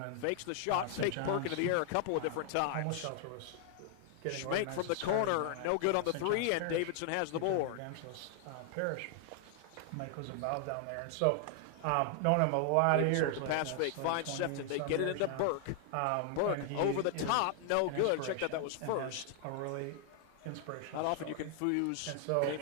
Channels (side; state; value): both; different; correlation 0.00